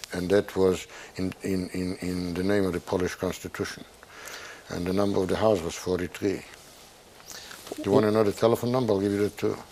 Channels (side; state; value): both; identical; correlation 1.00